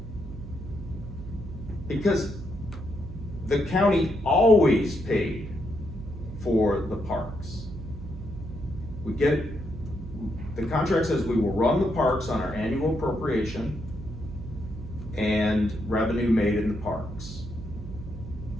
Because the county always paid for the parks. The contract says we will run the parks on our annual appropriation and revenue made in the parks.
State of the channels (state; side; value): noise; right; hum, 11 dB below the sound